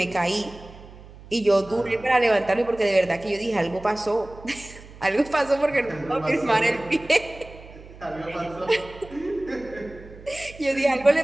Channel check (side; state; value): right; noise; hum, 19 dB below the sound